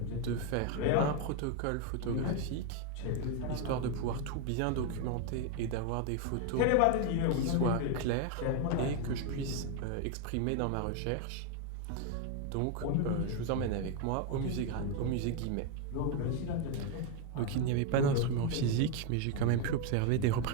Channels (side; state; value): both; different; correlation 0.01